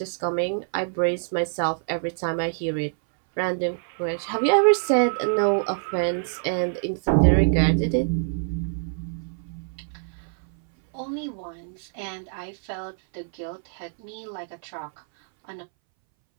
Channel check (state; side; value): silent; left; 61 dB below the other